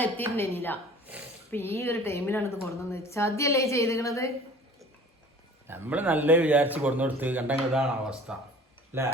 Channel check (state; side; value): normal; both; correlation 0.46